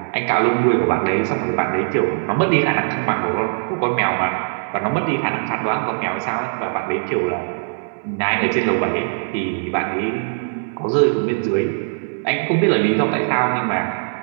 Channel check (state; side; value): silent; left; digital silence